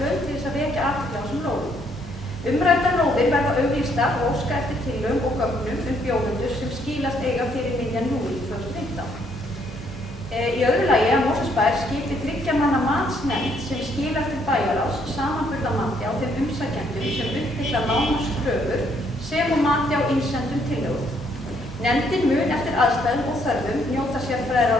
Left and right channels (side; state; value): both; normal; correlation 0.69